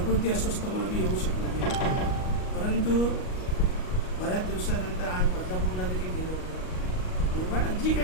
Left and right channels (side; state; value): right; late; 38 ms